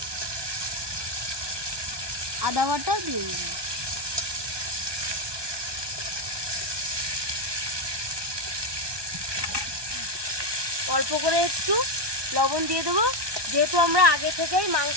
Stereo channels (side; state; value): left; late; 1.2 ms